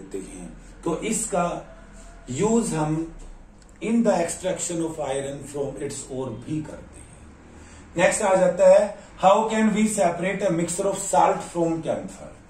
हैं। तो इसका यूज हम in the extraction of iron from its ore भी करते हैं। नेक्स्ट आ जाता है how can we separate a mixture of salt from camphor.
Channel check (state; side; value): identical; both; correlation 1.00